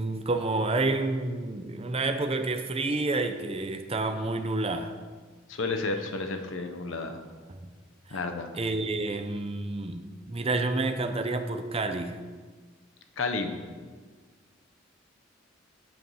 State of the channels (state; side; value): normal; both; correlation 0.40